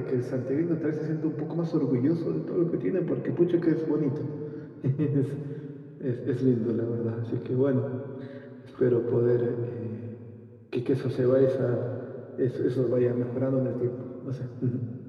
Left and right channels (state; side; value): identical; both; correlation 1.00